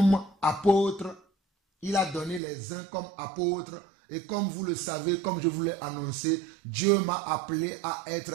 apôtres. Il a donné les uns comme apôtres. Et comme vous le savez, comme je vous l'ai annoncé, Dieu m'a appelé à être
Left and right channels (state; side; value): drops out; left; at 2.4 s